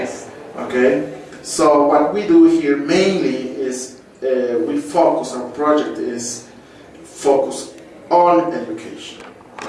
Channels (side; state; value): both; identical; correlation 1.00